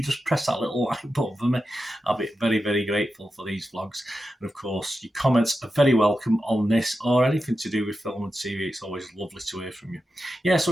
just press that little like button for me, I'll be very, very grateful for these vlogs. And of course, your comments are very welcome on this or anything to do with film and TV. It's always lovely to hear from you. Yeah, so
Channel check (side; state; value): both; normal; correlation 0.90